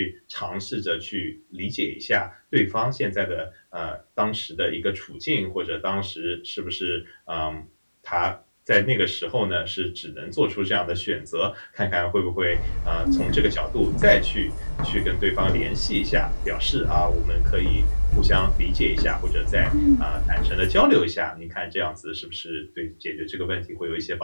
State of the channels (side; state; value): both; inverted; correlation -1.00